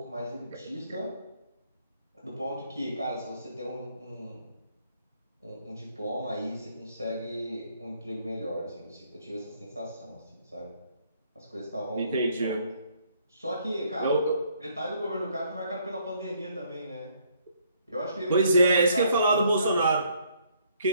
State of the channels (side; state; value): both; inverted; correlation -0.67